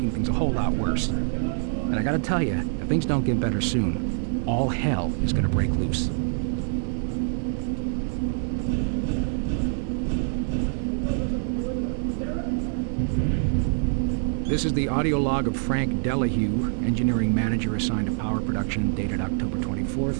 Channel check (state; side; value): silent; left; 61 dB below the other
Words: things a whole lot worse. And I gotta tell you, if things don't get better soon, all hell is gonna break loose. This is the audio log of Frank Delahue, engineering manager assigned to power production, dated October